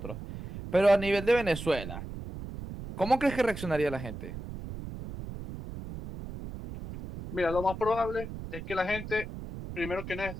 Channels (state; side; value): noise; right; rumble, 10 dB below the sound